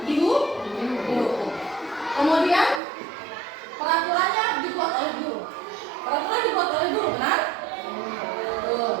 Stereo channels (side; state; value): left; drops out; at 2.8 s